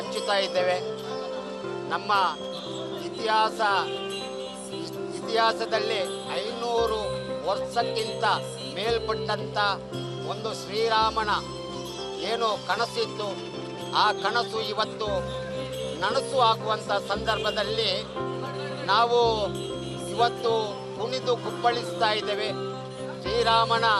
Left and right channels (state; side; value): identical; both; correlation 1.00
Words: ಇದ್ದೇವೆ. ನಮ್ಮ ಇತಿಹಾಸದಲ್ಲಿ 500 ವರ್ಷಕ್ಕಿಂತ ಮೇಲ್ಪಟ್ಟಂಥ ಒಂದು ಶ್ರೀರಾಮನ ಏನು ಕನಸಿತ್ತು, ಆ ಕನಸು ಇವತ್ತು ನನಸು ಆಗುವಂಥ ಸಂದರ್ಭದಲ್ಲಿ ನಾವು ಇವತ್ತು ಕುಣಿದು ಕುಪ್ಪಳಿಸ್ತಾ ಇದ್ದೇವೆ. ಶ್ರೀರಾಮನ